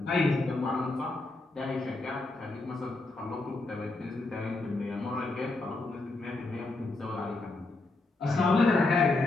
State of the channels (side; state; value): right; quieter; 3.2 dB